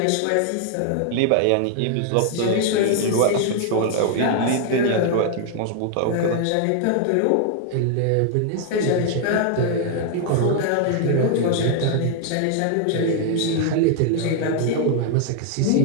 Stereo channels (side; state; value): both; different; correlation 0.00